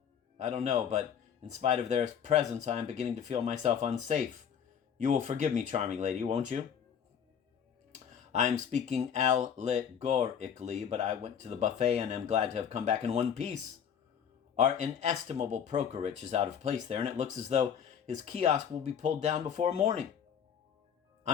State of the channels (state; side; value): quieter; right; 8.0 dB